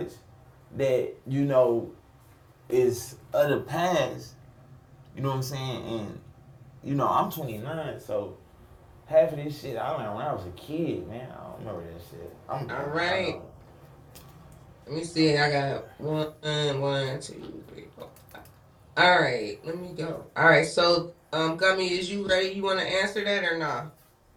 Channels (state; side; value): identical; both; correlation 1.00